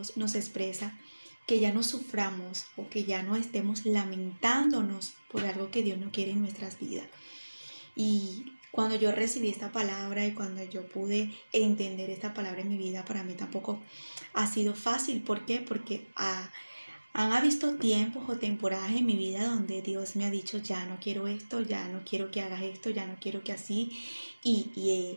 nos expresa que ya no suframos o que ya no estemos lamentándonos por algo que Dios no quiere en nuestras vidas. Y cuando yo recibí esta palabra y cuando yo pude entender esta palabra en mi vida, para mí tampoco ha sido fácil. ¿Por qué? Porque han habido tiempos o temporadas en mi vida donde Dios me ha dicho: ya no quiero esto, ya no quiero que hagas esto, ya no quiero que así.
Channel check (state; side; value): inverted; both; correlation -1.00